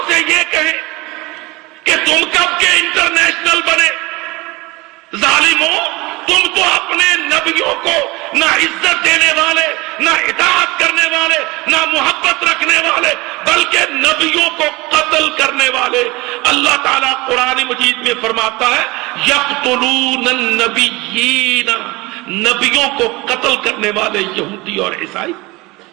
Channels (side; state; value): left; quieter; 22.9 dB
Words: سے یہ کہیں کہ تم کب کے انٹرنیشنل بنے؟ ظالموں، تم تو اپنے نبیوں کو نہ عزت دینے والے، نہ اطاعت کرنے والے، نہ محبت رکھنے والے، بلکہ نبیوں کو قتل کرنے والے. اللہ تعالیٰ قرآن مجید میں فرماتا ہے یقتلون النبیین، نبیوں کو قتل کرنے والے یہودی اور عیسائی.